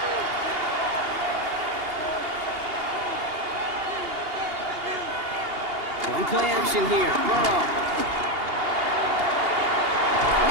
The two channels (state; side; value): late; left; 2.8 ms